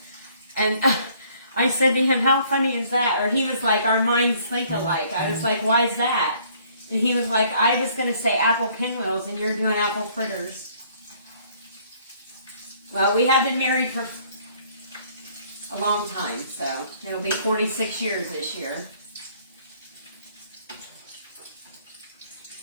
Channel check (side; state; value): both; inverted; correlation -0.61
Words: And I said to him, how funny is that? Or he was like, our minds think alike. I was like, why is that? And he was like, I was going to say apple pinwheels, and you're doing apple fritters. Well, we have been married for a long time, so it'll be 46 years this year.